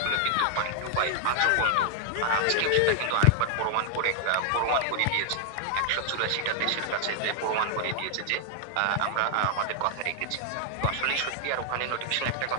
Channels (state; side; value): different; both; correlation 0.00